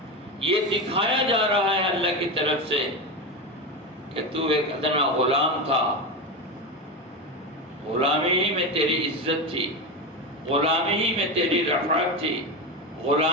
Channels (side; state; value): both; normal; correlation 0.17